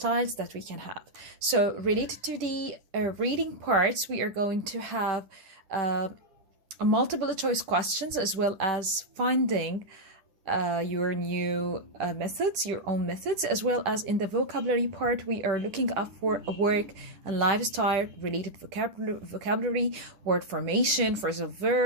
that we can have. So, related to the reading parts, we are going to have multiple choice questions as well as finding your new methods, your own methods, as well as in the vocabulary part, we are looking up for a work and lifestyle related vocabulary, word formation, phrasal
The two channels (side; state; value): left; late; 10 ms